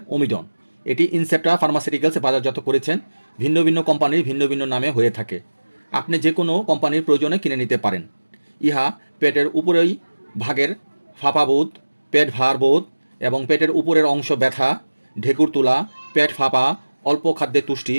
ওমিডন। এটি ইনসেপ্টা ফার্মাসিউটিক্যালস বাজারজাত করেছেন। ভিন্ন ভিন্ন কোম্পানির ভিন্ন ভিন্ন নামে হয়ে থাকে। আপনি যে কোনো কোম্পানির প্রয়োজনে কিনে নিতে পারেন। ইহা পেটের উপরেই ভাগের ফাঁপাবোধ, পেট ভার বোধ এবং পেটের উপরের অংশ ব্যথা, ঢেকুর তোলা, পেট ফাঁপা, অল্প খাদ্যে তুষ্টি,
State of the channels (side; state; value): both; inverted; correlation -1.00